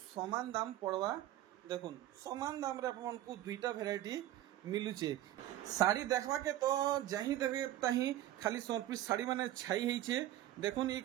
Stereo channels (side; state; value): left; quieter; 13.7 dB